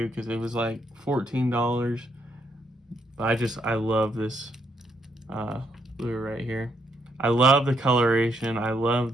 because it was like $14. But I love this lure right here. I love the coloration. I love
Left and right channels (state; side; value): normal; both; correlation 0.75